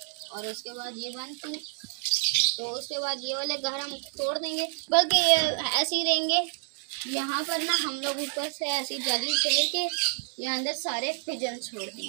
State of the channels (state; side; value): silent; left; 58 dB below the other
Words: और उसके बाद ये बंद की, तो उसके बाद ये वाले घर हम तोड़ देंगे, बल्कि ये ऐसे ही रहेंगे। यहाँ पर ना हम लोग ऊपर से ऐसी जाली फेर के यहाँ अंदर सारे पिजन छोड़